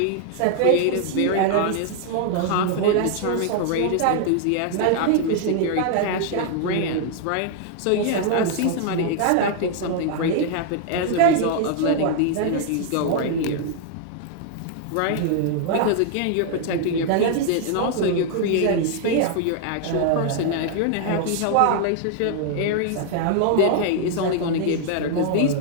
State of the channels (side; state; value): both; different; correlation 0.00